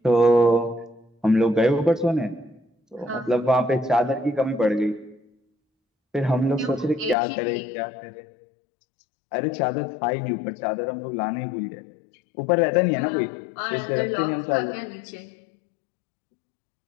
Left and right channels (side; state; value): right; drops out; at 7.2 s